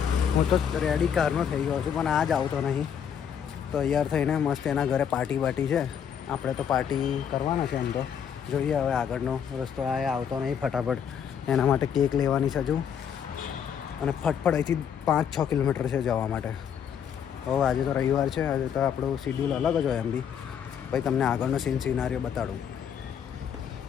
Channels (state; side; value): quieter; right; 8.1 dB